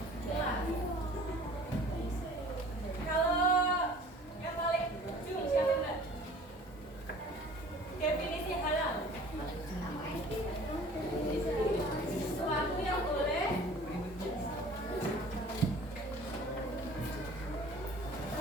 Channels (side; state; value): both; normal; correlation 0.48